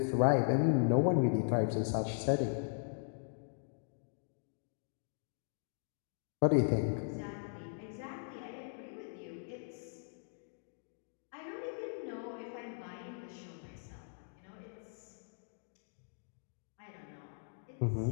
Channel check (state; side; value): silent; right; digital silence